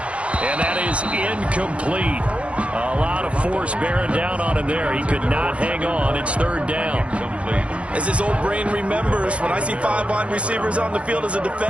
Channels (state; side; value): late; left; 0.062 ms